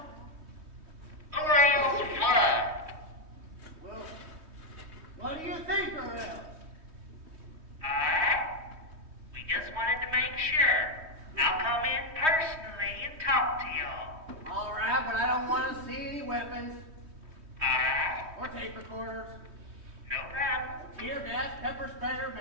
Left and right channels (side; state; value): left; late; 3.2 ms